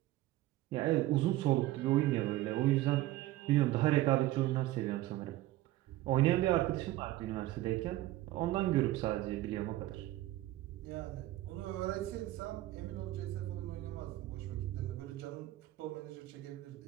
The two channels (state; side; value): quieter; left; 16.3 dB